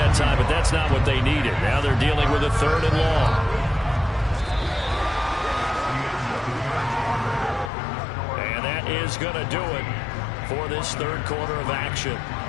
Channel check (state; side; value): drops out; right; at 7.7 s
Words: time, but that's not what they needed. Now they're dealing with a 3rd and long. And that is going to do it for this 3rd quarter of action.